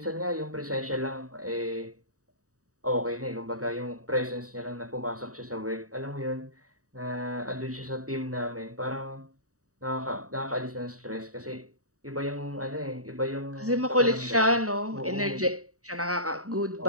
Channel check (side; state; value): left; late; 0.66 ms